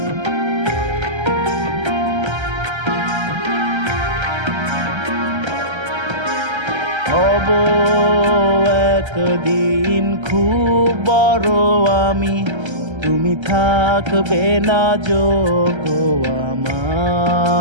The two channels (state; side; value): late; left; 1.3 ms